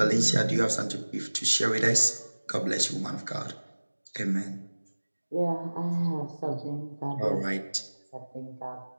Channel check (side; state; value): both; inverted; correlation -1.00